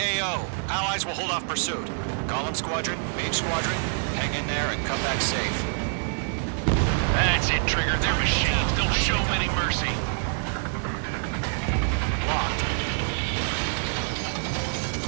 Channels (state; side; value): silent; left; digital silence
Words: Allies will hold off pursuit. Golem Squadron, Mage Squadron, hang in there and come back safe. That's it, Trigger. They're machines. Don't show them any mercy. Locked.